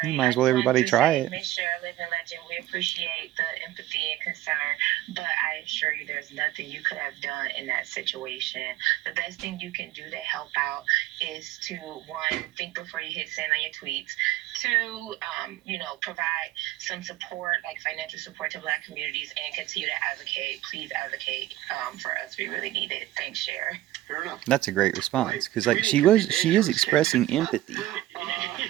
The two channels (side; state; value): left; quieter; 15.0 dB